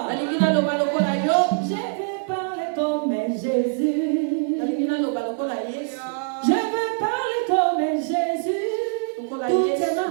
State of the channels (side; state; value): left; silent; 63 dB below the other